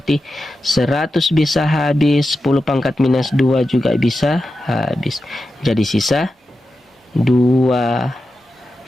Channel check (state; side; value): normal; both; correlation 0.91